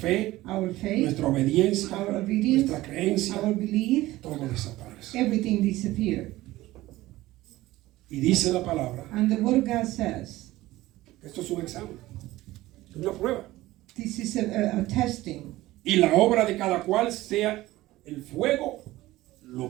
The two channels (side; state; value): left; quieter; 17.3 dB